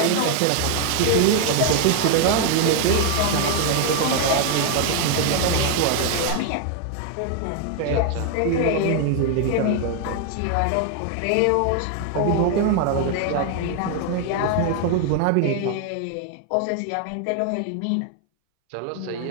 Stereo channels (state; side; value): different; both; correlation 0.00